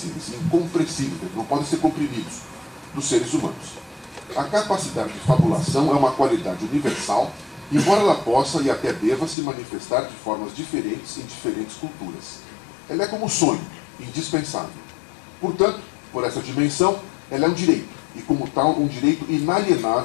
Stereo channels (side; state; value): right; drops out; at 9.3 s